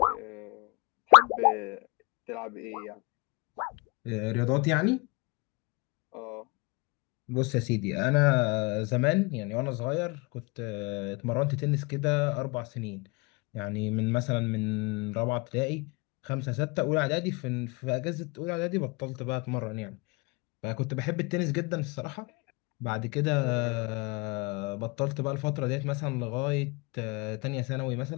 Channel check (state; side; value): quieter; right; 28.0 dB